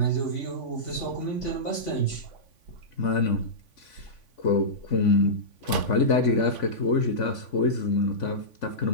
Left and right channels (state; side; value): late; right; 3.5 ms